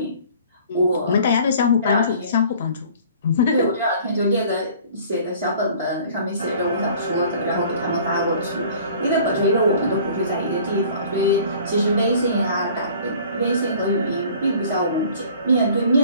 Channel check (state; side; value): inverted; both; correlation -0.50